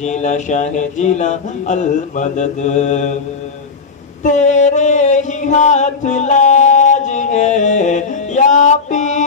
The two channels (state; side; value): quieter; right; 4.7 dB